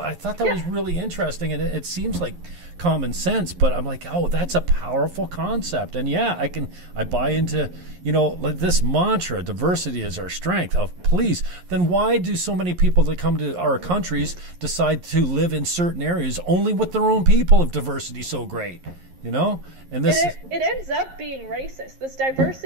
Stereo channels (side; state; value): left; late; 11 ms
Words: thought that was really interesting, and it seems like common sense, but I'm like, oh, that's a powerful concept. And yeah, I buy into, like this mantra, diversity is our strength. Oh, please, then why do so many people that come to our countries decide to live in certain areas only with their own people if diversity is so great? And this it ends up being racist. This